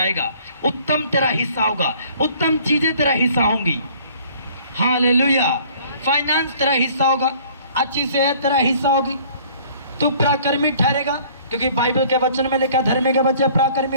उत्तम तेरा हिस्सा होगा, उत्तम चीजें तेरा हिस्सा होंगी। हालेलुया। फाइनेंस तेरा हिस्सा होगा, अच्छी सेहत तेरा हिस्सा होगी, तू पराक्रमी ठहरेगा, क्योंकि बाइबल के वचन में लिखा धर्मी के बच्चे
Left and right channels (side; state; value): both; inverted; correlation -0.54